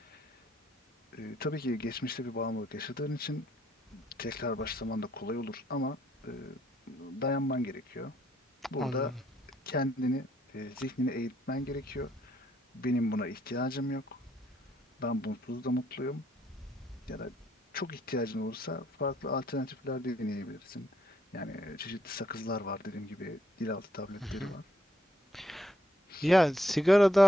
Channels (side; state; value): both; normal; correlation 0.72